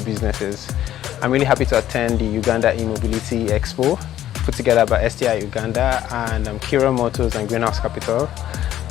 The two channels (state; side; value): quieter; right; 12.3 dB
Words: businesses. I'm really happy to attend the Uganda E-Mobility Expo, put together by STI Uganda and Kira Motors and Greenhouse Capital.